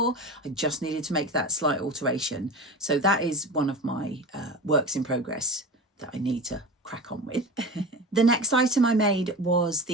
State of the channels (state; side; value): normal; both; correlation 0.30